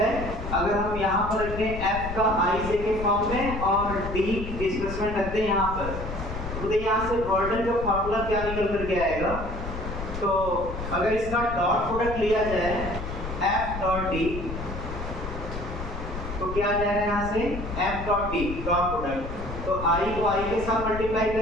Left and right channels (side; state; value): left; noise; rumble, 7 dB below the sound